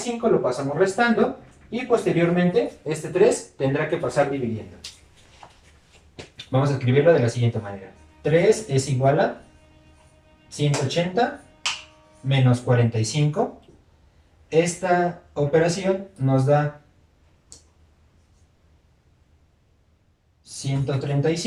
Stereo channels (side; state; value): both; identical; correlation 1.00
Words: lo pasamos restando y posteriormente este 3 tendrá que pasar dividiendo. Vamos a escribirlo de la siguiente manera. 3 es igual a 180 menos 45. Esta operación nos da